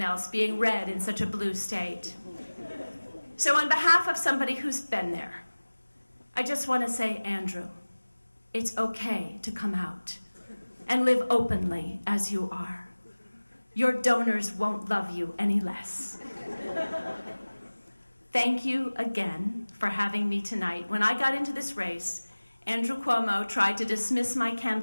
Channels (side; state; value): both; inverted; correlation -1.00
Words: else, being red in such a blue state. So on behalf of somebody who's been there, I just want to say, Andrew, it's okay to come out and live openly as you are. Your donors won't love you any less. Thank you again for having me tonight. When I got into this race, Andrew Cuomo tried to dismiss my